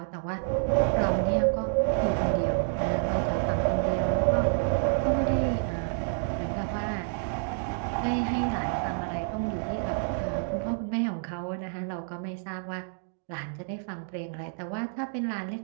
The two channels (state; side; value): silent; left; digital silence